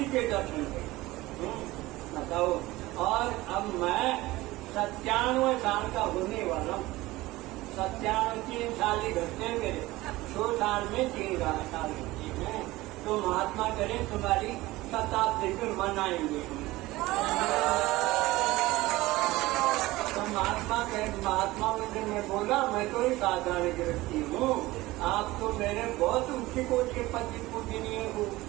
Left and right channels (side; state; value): left; quieter; 18.9 dB